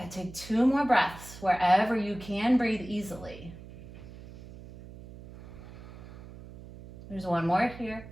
take 2 more breaths wherever you can breathe easily. There's 1 more here.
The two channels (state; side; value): noise; right; hum, 16 dB below the sound